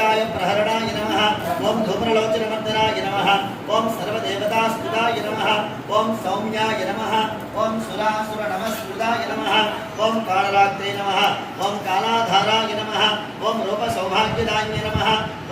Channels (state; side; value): identical; both; correlation 1.00